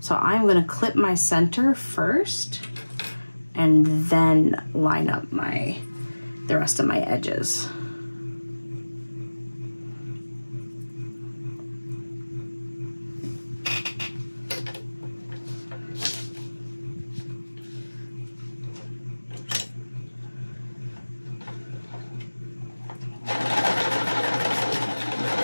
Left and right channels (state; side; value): inverted; both; correlation -1.00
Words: So I'm gonna clip my center first and then line up the rest of my edges.